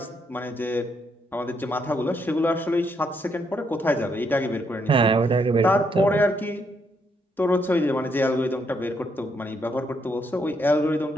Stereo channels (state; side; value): normal; both; correlation 0.75